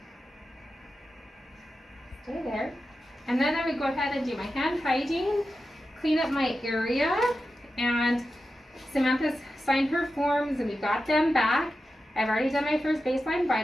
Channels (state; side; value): normal; both; correlation 0.91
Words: Stay there. And then I would go ahead and do my hand hygiene, clean up my area, and Samantha's signed her forms and we got them back. I've already done my first baseline